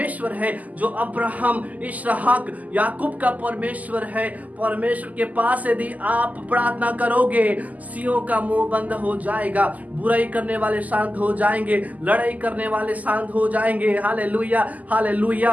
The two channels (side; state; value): left; late; 0.078 ms